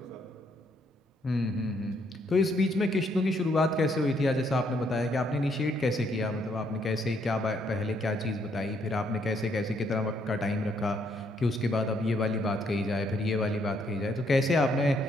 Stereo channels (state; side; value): normal; both; correlation 0.71